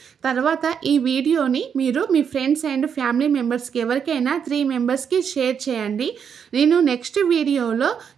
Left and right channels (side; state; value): left; quieter; 7.4 dB